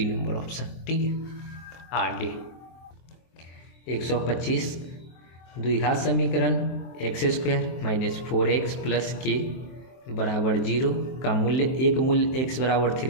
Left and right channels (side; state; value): right; late; 23 ms